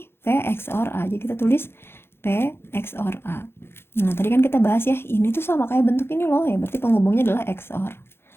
P XOR A. Jadi kita tulis P XOR A. Nah, tadi kan kita bahas ya, ini tuh sama kayak bentuk ini loh, ya berarti penghubungnya adalah XOR.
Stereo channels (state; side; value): late; right; 0.11 ms